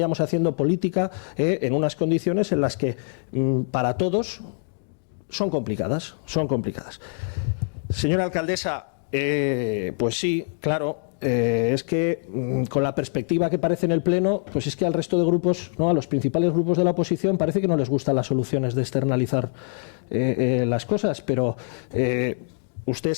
haciendo política en unas condiciones en las que para todos son complicadas, son complicadas. Señora alcaldesa, pues sí, claro, es que con la perspectiva que parece en el Pleno, pues es que al resto de grupos, ¿no?, a los principales grupos de la oposición, parece que no les gustan las soluciones de externalizar las cosas, pero usted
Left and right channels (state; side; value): silent; right; digital silence